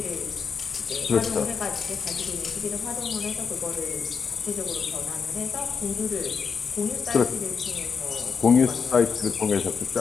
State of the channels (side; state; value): right; quieter; 5.8 dB